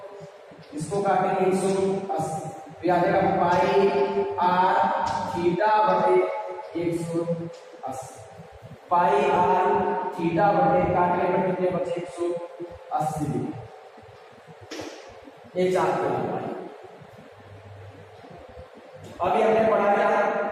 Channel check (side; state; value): both; identical; correlation 1.00